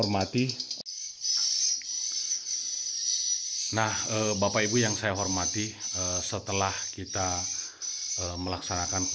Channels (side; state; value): both; identical; correlation 1.00